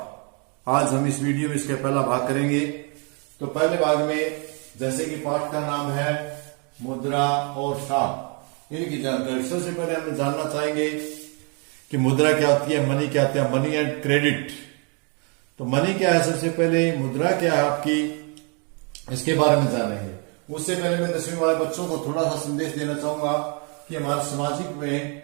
आज हम इस वीडियो में इसका पहला भाग करेंगे। तो पहले भाग में जैसे कि पाठ का नाम है मुद्रा और साख, इनकी जानकारी सबसे पहले हम जानना चाहेंगे कि मुद्रा क्या होती है, मनी क्या होती है, मनी एंड क्रेडिट। तो मनी क्या है, सबसे पहले मुद्रा क्या है आपकी, इसके बारे में जानेंगे। उससे पहले मैं 10वीं वाले बच्चों को थोड़ा सा संदेश देना चाहूंगा कि हमारे सामाजिक में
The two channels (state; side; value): quieter; left; 35.8 dB